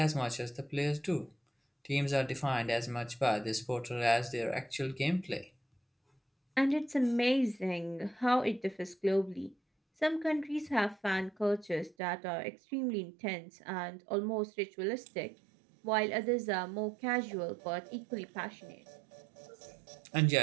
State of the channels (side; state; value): left; drops out; at 12.0 s